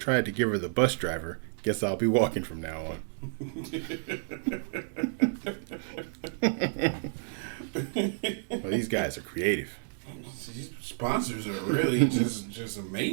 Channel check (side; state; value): left; silent; digital silence